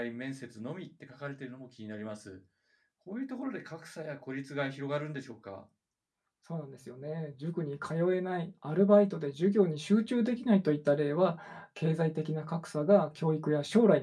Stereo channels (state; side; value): identical; both; correlation 1.00